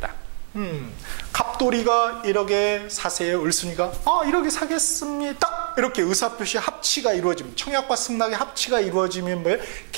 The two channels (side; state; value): left; silent; 58 dB below the other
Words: 갑돌이가 1억에 사세요. 을순이가 1억에 사겠습니다. 이렇게 의사표시 합치가 이루어지면, 청약과 승낙의 합치가 이루어지면 뭐예요?